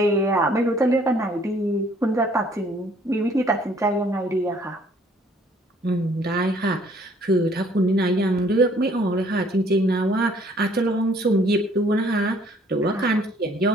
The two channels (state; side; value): normal; both; correlation 0.60